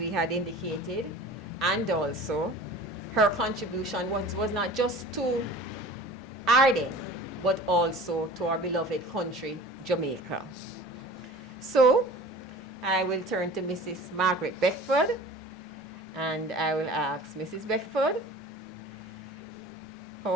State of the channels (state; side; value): normal; both; correlation 0.42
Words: had indicated, and also her contribution was not just to Ardenne, but also to our beloved country, Jamaica. So, I will turn to Mrs. Margaret Beckford, and I will ask Mrs. Beckford, how